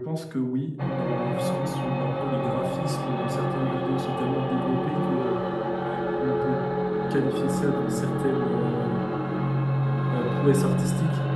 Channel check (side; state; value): both; identical; correlation 1.00